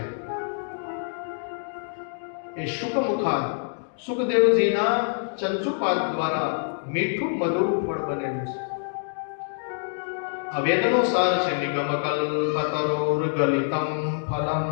એ શુકમુખા સુખદેવજીના ચંચુપાદ દ્વારા મીઠું મધુર ફળ બનેલું છે. આ વેદનો સાર છે. નિગમ કલ્પતરોર ગલિતમ ફલમ.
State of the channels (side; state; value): right; silent; digital silence